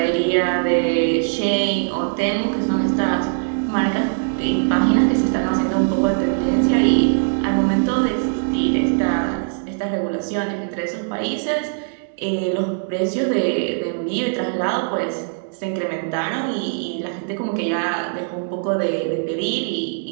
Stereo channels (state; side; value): silent; left; digital silence